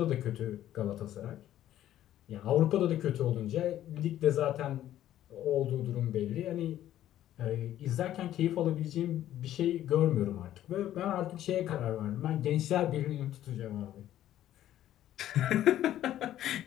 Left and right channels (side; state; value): right; quieter; 12.5 dB